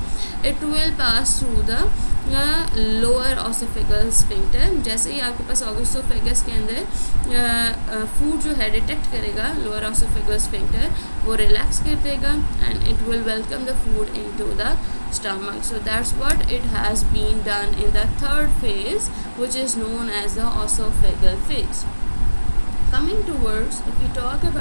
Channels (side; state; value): both; inverted; correlation -1.00